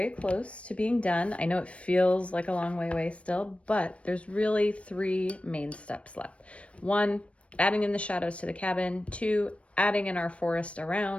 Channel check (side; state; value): right; late; 0.062 ms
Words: close to being done. I know it feels like a long way away still, but there's really 3 main steps left. 1, adding in the shadows to the cabin. 2, adding in our forest